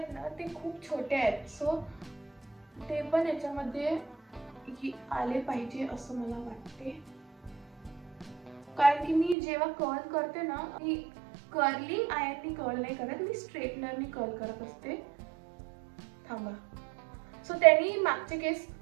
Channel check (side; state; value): left; drops out; at 9.3 s